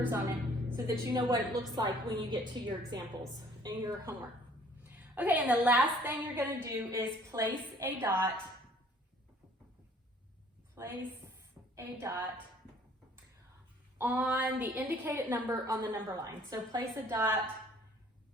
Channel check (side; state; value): both; normal; correlation 0.56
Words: on it so that you know what it looks like when you get to your examples and your homework. Okay, and the last thing you're going to do is place a dot on the indicated number on the number line. So place a dot